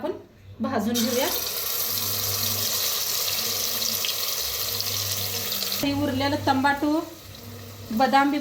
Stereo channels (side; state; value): both; identical; correlation 1.00